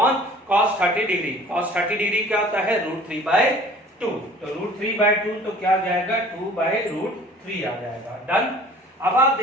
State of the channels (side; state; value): both; normal; correlation 0.49